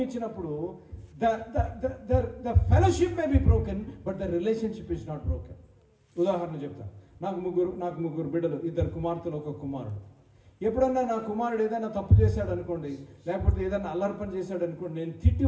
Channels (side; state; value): both; identical; correlation 1.00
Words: the fellowship may be broken but the relationship is not broken. ఉదాహరణ చెప్తాను, నాకు ముగ్గురు బిడ్డలు, 2 కుమార్తెలు 1 కుమారుడు. ఎప్పుడన్నా నా కుమారుడు ఏదైనా తప్పు చేశాడు అనుకోండి, లేకపోతే ఏదైనా అల్లర్పణ చేశాడు అనుకోండి, నేను తిట్టి